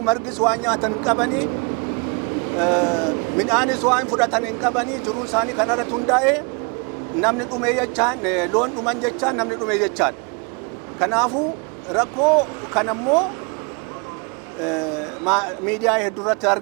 margis waan nyaatan hin qabanii midhaanis waan fudhatan hin qabanii jiruun isaanii kanarratti hundaa'e namni dhumee jechaan loon dhuman jechaan namni dhumee jechaan. Kanaafuu rakkoo kanammoo miidiyaa hedduu irratti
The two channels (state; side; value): quieter; left; 33.0 dB